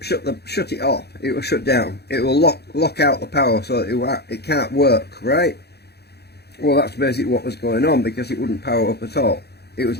shut it off. It will shut down. It will lock out the power, so it can't work, right? Well, that's basically what was going on, because it wouldn't power up at all. It was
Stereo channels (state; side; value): late; right; 0.48 ms